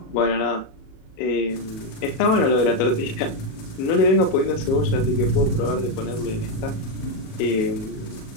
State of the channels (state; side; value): late; right; 37 ms